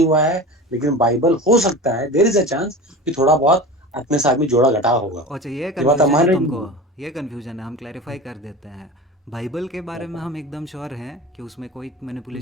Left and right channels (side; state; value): both; normal; correlation 0.32